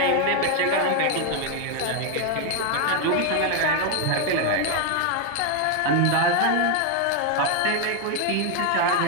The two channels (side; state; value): both; different; correlation 0.01